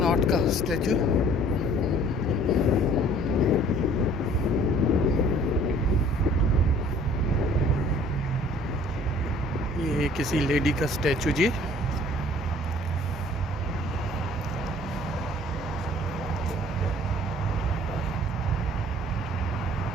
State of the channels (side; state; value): both; normal; correlation 0.54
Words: का स्टैचू, ये किसी लेडी का स्टैचू जी।